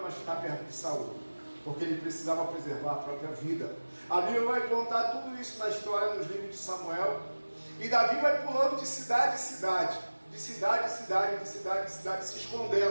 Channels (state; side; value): inverted; both; correlation -1.00